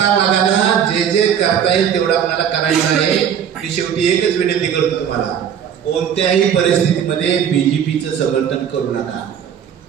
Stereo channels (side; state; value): left; quieter; 8.5 dB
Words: जे जे करता येईल तेवढं आपल्याला करायचं आहे. की शेवटी एकच विनंती करतो तुम्हाला, कोणत्याही परिस्थितीमध्ये बीजेपीचं समर्थन करू नका,